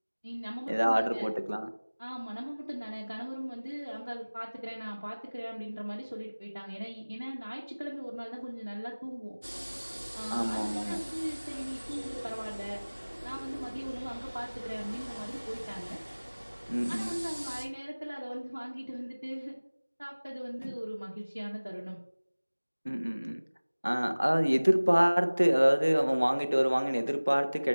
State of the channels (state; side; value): inverted; both; correlation -1.00